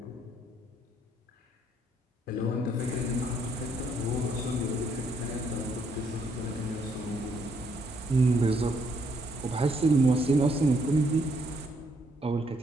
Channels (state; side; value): normal; both; correlation 0.72